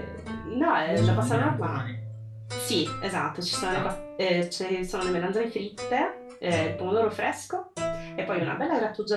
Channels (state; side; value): identical; both; correlation 1.00